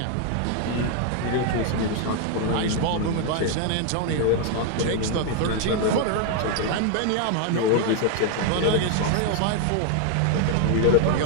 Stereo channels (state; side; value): different; both; correlation 0.01